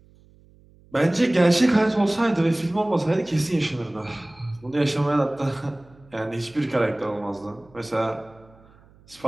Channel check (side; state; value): right; noise; hum, 28 dB below the sound